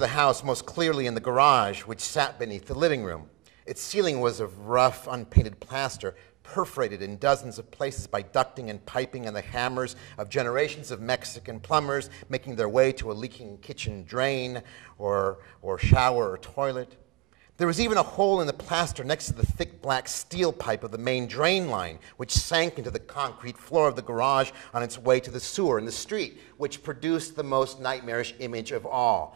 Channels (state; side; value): quieter; left; 21.1 dB